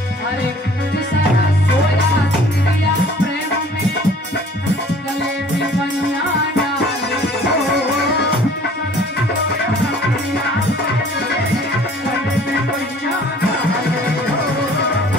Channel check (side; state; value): both; normal; correlation 0.52